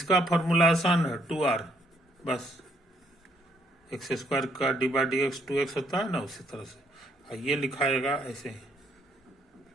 फॉर्मूला आसान है, 2r, बस एक्स स्क्वायर का D by D x 2x होता है ना, उसी तरह से ये लिखाएगा ऐसे ही,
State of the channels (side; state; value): both; normal; correlation 0.70